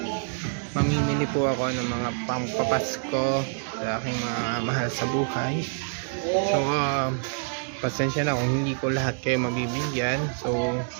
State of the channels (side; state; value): left; silent; 61 dB below the other